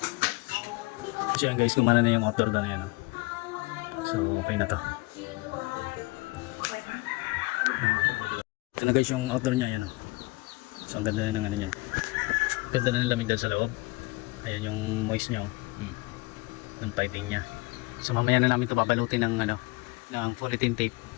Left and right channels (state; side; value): quieter; right; 24.3 dB